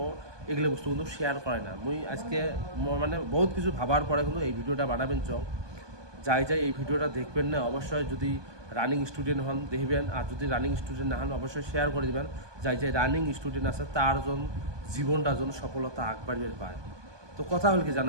এগুলো বস্তু কিন্তু শেয়ার করে না। মুই আজকে বহুত কিছু ভাবার পরে কিন্তু এই ভিডিওটা বানাবেন চং। যাই এই ভিডিওটা দেখবেন না, অবশ্যই যদি রানিং স্টুডেন্ট হন দেখবেন, আর যদি রানিং স্টুডেন্ট না হন অবশ্যই শেয়ার করে দেবেন। যাই রানিং স্টুডেন্ট আছে তার জীবনটা যেন সফলতা আগবাড়িয়ে পায়। তো কথা হল কি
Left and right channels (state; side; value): late; left; 1.2 ms